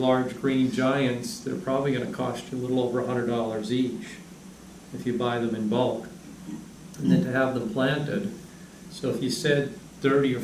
green giants, they're probably gonna cost you a little over $100 each if you buy them in bulk. And then to have them planted, so if you said 30 or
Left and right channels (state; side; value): identical; both; correlation 1.00